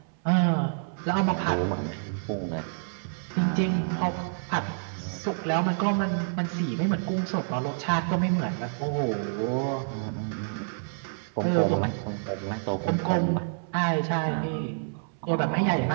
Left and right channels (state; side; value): silent; left; 59 dB below the other